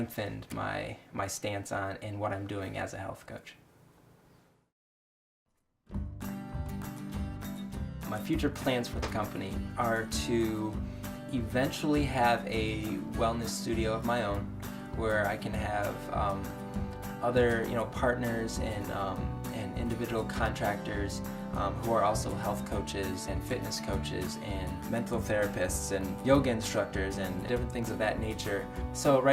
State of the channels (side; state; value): both; identical; correlation 1.00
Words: my stance on and what I'm doing as a health coach. My future plans for the company are to eventually have a wellness studio of my own, where I can have other partners and individual contractors who are also health coaches and fitness coaches and mental therapists and yoga instructors and different things of that nature. So